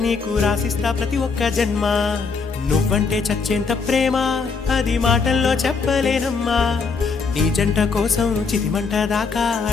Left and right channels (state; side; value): quieter; right; 5.0 dB